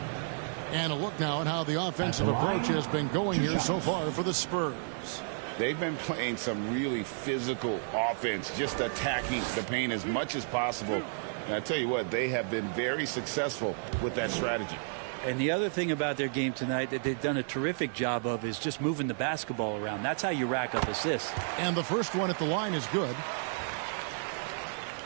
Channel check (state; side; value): silent; left; digital silence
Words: And a look now at how the offensive approach has been going here so far for the Spurs. They've been playing some really physical offense, just attacking the paint as much as possible. And I tell you what, they have been very successful with that strategy. And the other thing about their game tonight that they've done a terrific job of is just moving the basketball around. That's how you rack up assists. And the first one at the line is good.